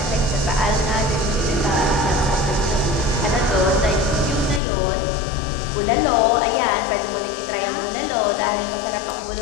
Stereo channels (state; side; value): drops out; right; at 4.6 s